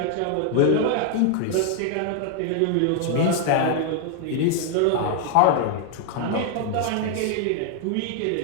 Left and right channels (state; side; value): different; both; correlation 0.00